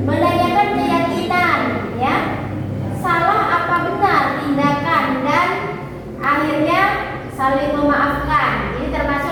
menanyakan keyakinan ya. Salah apa benar tindakan dan akhirnya saling memaafkan. Ini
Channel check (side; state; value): both; identical; correlation 1.00